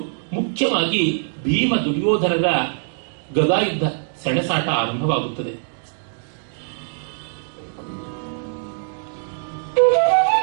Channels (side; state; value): left; silent; digital silence